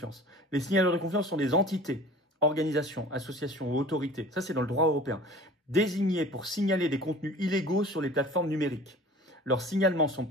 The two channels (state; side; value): normal; both; correlation 0.43